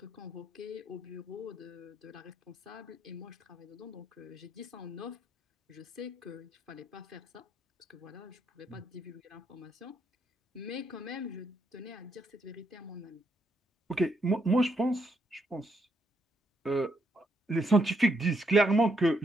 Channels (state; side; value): normal; both; correlation 0.76